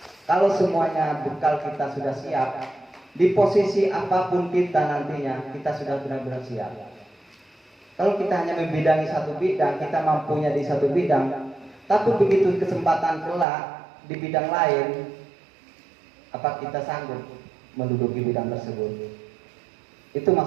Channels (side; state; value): left; drops out; at 13.5 s